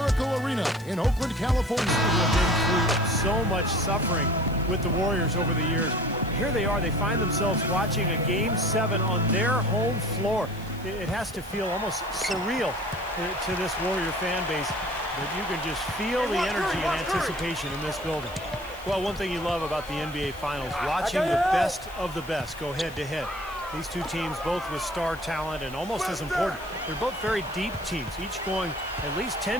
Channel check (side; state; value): left; noise; hiss, 22 dB below the sound